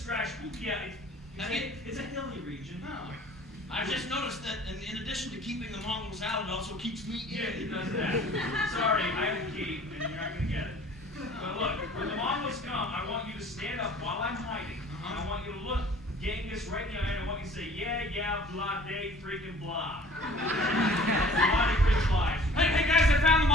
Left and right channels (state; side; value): normal; both; correlation 0.49